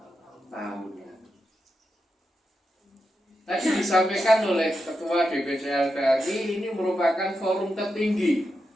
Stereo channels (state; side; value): normal; both; correlation 0.87